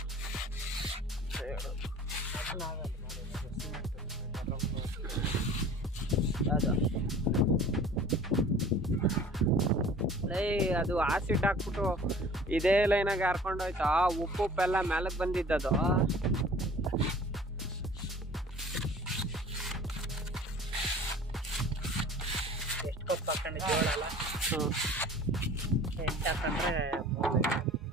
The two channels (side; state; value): both; normal; correlation 0.45